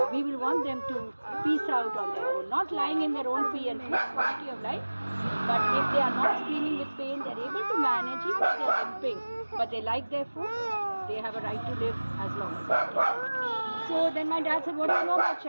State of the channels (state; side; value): inverted; both; correlation -1.00